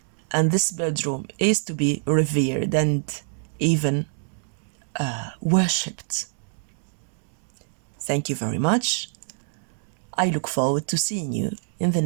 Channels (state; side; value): silent; left; digital silence